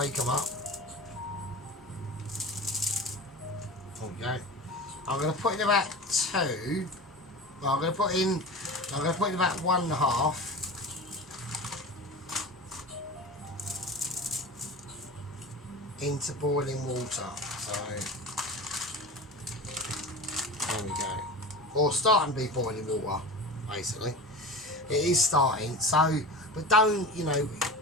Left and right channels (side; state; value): both; normal; correlation 0.31